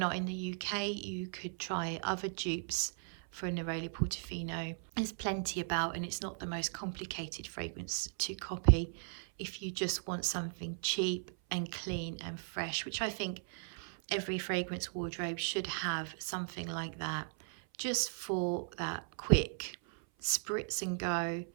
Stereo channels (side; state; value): left; silent; 53 dB below the other